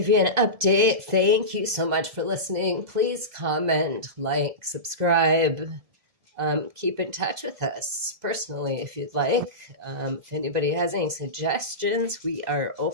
you an update. Thank you so much for listening. Please comment, like, subscribe. Keep in touch with us personally if you'd like. If anybody has any suggestions, we are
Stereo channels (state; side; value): late; left; 2.0 ms